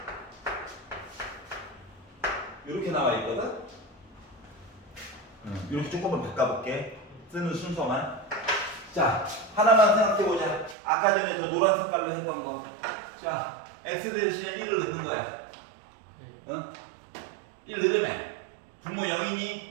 이렇게 나와 있거든? 이렇게 조금만 바꿔볼게. 쓰는 순서만. 자, 하나만 생각해보자. 아까 전에 저 노란 색깔로 했던 거. 자, x 대신에 1을 넣는 거야. 1 넣으면 분모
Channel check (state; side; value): drops out; left; at 10.8 s